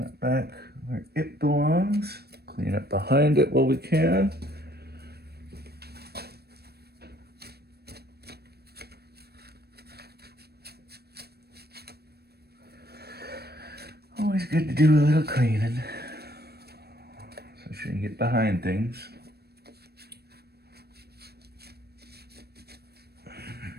back where it belongs. Clean up behind it while we can. Always good to do a little cleaning. So you can get behind things.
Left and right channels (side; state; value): left; late; 0.47 ms